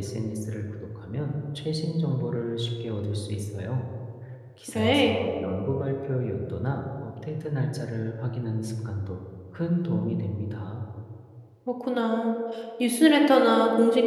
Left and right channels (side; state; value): both; identical; correlation 1.00